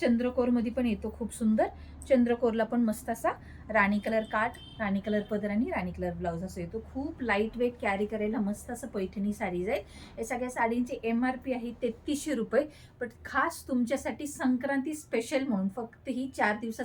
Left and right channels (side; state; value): both; identical; correlation 1.00